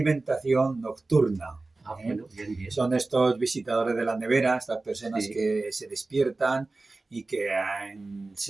Nocturna. Ah, ¿Eh? bueno, bien, bien. Son estos visitadores de la nevera, estas personas Sí. que se despiertan y que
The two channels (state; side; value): quieter; left; 3.3 dB